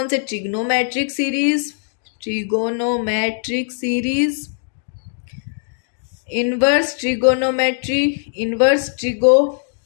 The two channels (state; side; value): silent; right; digital silence